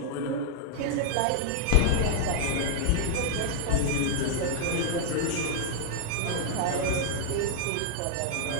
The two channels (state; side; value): different; both; correlation 0.00